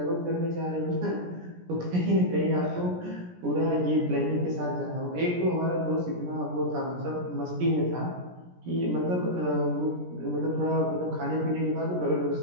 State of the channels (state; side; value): late; left; 17 ms